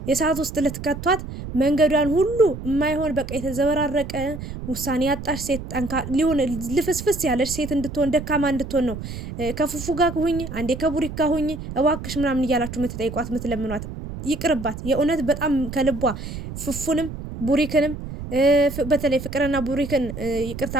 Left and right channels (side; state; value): right; noise; rumble, 9 dB below the sound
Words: የሰዓት ውስጥ ልትከቷት፣ መንገዷን ሁሉ የማይሆን በቃ የተዘበራረቀ ውሳኔ ያጣሽ ሴት ሊሆን ልፍስፍስ ያለች ሴት እንድትሆን ደካማ እንድትሆን ነው ከፉፉ ጋር ሁኝ፣ አንዴ ከቡሪክ ጋር ሁኝ እባክሽ ምናምን እያላችሁ የምትጠይቋት የምትለምኗት። ይቅርባት የእውነት በጣም ከልቧ ፉፉንም ቡሪክንም በተለይ ፍቅርና ቡሪክን ይቅርታ